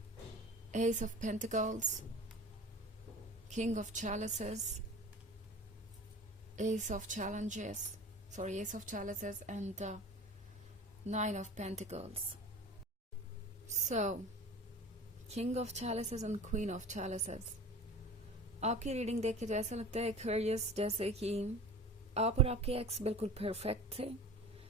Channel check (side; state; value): both; normal; correlation 0.38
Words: Ace of Pentacles, King of Chalices, Ace of Chalices, and Nine of Pentacles. So, King of Chalices and Queen of Chalices. आपकी रीडिंग देख के तो ऐसा लगता है एक्वेरियस जैसे कि आप और आपके एक्स बिल्कुल परफेक्ट थे।